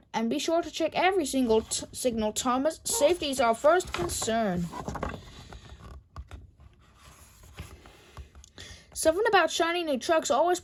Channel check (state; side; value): identical; both; correlation 1.00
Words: "and be sure to check every single signal, Thomas. Safety is our first concern." Something about shiny new trucks always